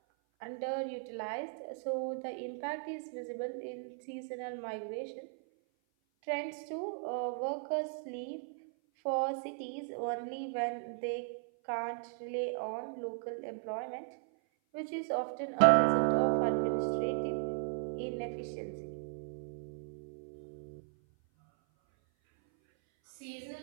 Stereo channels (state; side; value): silent; left; 53 dB below the other